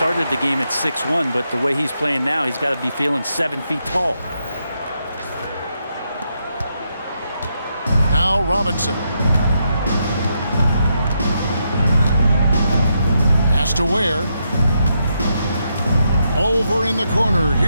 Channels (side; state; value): both; inverted; correlation -0.81